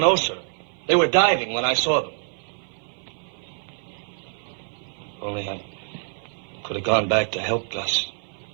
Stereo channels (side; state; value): left; silent; 56 dB below the other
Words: sir. They were diving when I saw them. Only I could have gone back to help Gus.